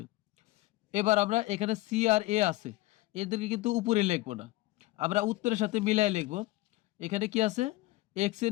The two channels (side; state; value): right; quieter; 18.6 dB